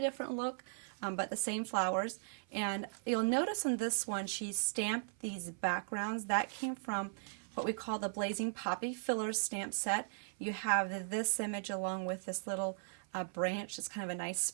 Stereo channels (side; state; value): left; silent; 53 dB below the other